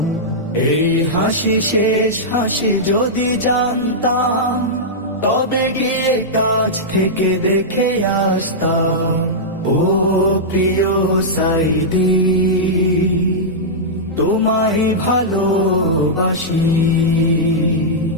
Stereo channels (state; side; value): normal; both; correlation -0.10